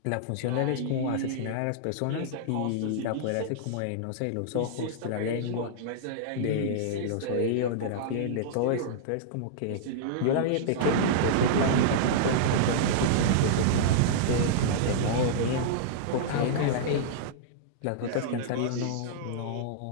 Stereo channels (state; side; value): different; both; correlation -0.02